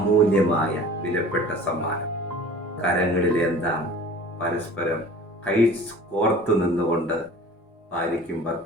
വിലപ്പെട്ട സമ്മാനം. കരങ്ങളിലെന്താം പരസ്പരം കൈ കോർത്തു നിന്നുകൊണ്ട് ഭാര്യയ്ക്കും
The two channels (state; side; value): normal; both; correlation 0.43